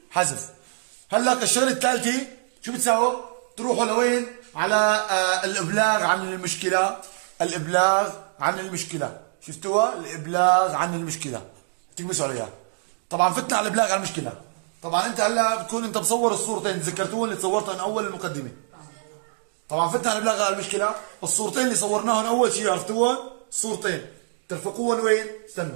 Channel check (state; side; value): silent; left; digital silence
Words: حذف. هلا الشغله الثالثه شو بتساووا؟ تروحوا لوين؟ على الابلاغ عن المشكله. الابلاغ عن المشكله. شفتوها؟ الابلاغ عن المشكله. تكبسوا عليها. طبعا فتنا على الابلاغ عن المشكله. طبعا انت هلا بتكون انت مصور الصورتين، تذكرتوهم اللي صورتهم اول المقدمه. طبعا فتنا على الابلاغ عن المشكله. الصورتين اللي صورناهم اول شيء عرفتوهم؟ الصورتين ترفقوهم وين؟